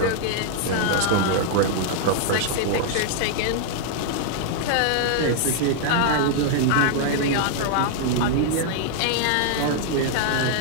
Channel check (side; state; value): both; different; correlation -0.01